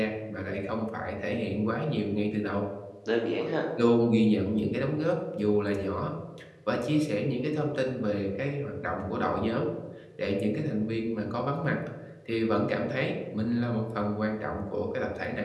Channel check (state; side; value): identical; both; correlation 1.00